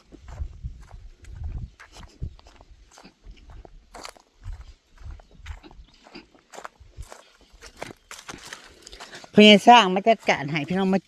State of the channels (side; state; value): both; identical; correlation 1.00